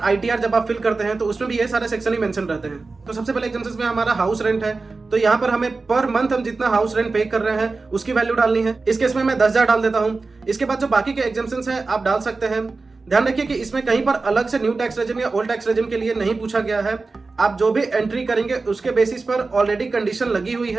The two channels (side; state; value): left; quieter; 3.9 dB